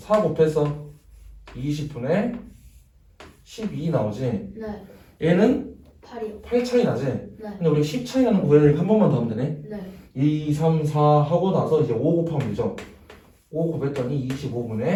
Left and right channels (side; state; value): both; identical; correlation 1.00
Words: 곱해서 20분의 12 나오지. 네. 얘는 8이요. 8 차이 나지. 네. 근데 우리 10 차이 나는 거 구해야 한 번만 더 하면 되네. 네. 2, 3, 4 하고 나서 이제 5 곱하면 되죠. 5 곱했더니